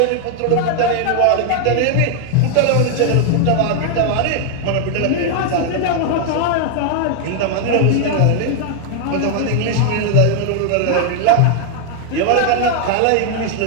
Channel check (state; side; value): different; both; correlation 0.00